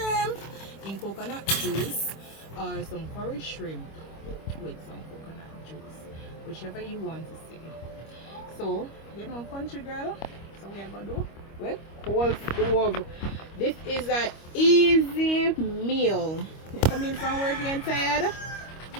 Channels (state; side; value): late; right; 25 ms